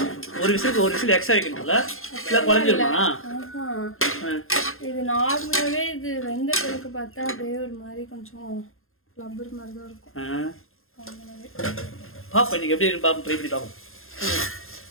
ஒரு விசில் எக்ஸ்ட்ரா வைக்கணும்ல, இல்லை குழஞ்சிருமா? இது நார்மலாகவே இது வெந்த பிறகு பார்த்தா அப்படியே ஒரு மாதிரி கொஞ்சம் லப்பர் மாதிரி தான் இருக்கும். பாப்பா இன்னைக்கு எப்படி இருக்கு பாப்போம், ட்ரை பண்ணி பார்ப்போம்.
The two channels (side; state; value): right; late; 0.61 ms